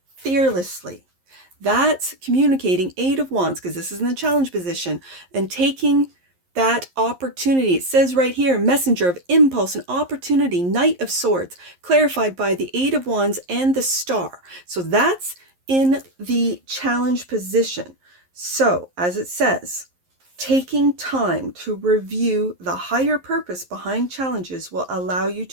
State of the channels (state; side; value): late; left; 11 ms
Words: fearlessly. That's communicating 8 of Wands, because this is in the challenge position, and taking that opportunity. It says right here, messenger of impulse and opportunity, Knight of Swords, clarified by the 8 of Wands and the Star. So that's in the challenge position. So, as it says, taking time to review the higher purpose behind challenges will allow you